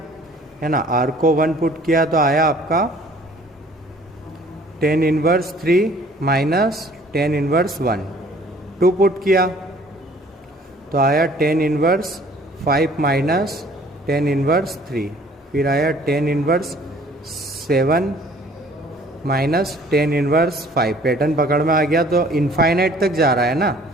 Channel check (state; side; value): normal; both; correlation 0.55